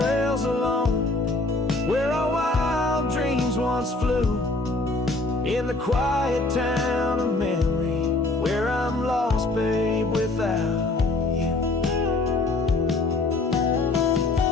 alone where our wild dreams once flew, in the quiet town of memory where I'm lost, babe, without you.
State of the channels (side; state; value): right; quieter; 3.0 dB